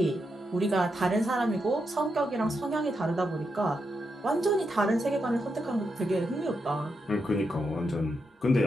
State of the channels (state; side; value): normal; both; correlation 0.84